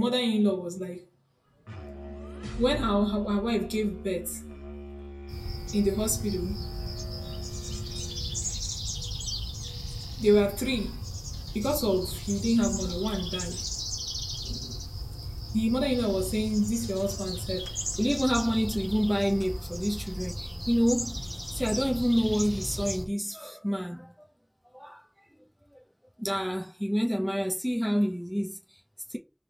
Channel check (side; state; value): both; identical; correlation 1.00